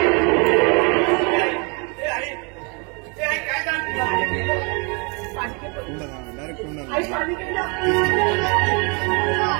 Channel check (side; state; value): left; quieter; 33.0 dB